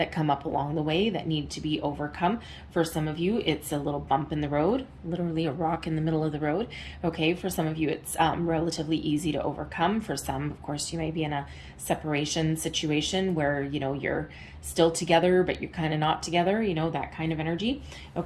come up along the way that need to be overcome. For some of you, it's a little bump in the road, literally a rock in the middle of the road. Okay, for some of you, it's relatively easy to overcome. For some, of course, you may be in a separation situation where, you're still together, but you're kind of not together, that kind of energy.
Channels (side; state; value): both; identical; correlation 1.00